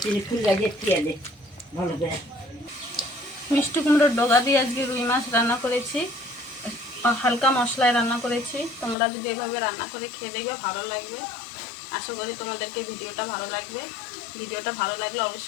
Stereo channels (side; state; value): right; drops out; at 9.0 s